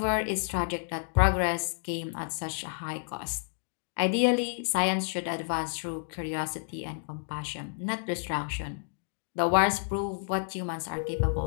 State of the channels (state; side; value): silent; right; digital silence